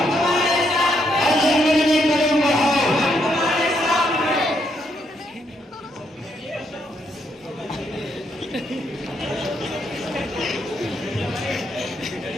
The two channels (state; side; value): normal; both; correlation 0.76